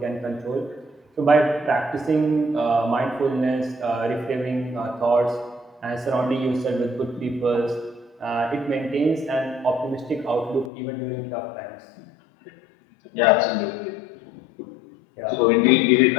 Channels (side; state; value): right; drops out; at 10.7 s